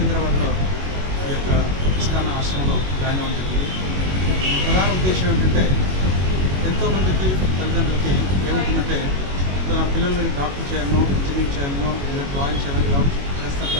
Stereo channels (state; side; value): late; left; 21 ms